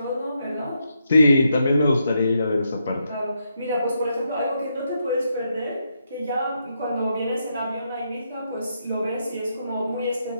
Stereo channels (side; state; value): both; inverted; correlation -0.80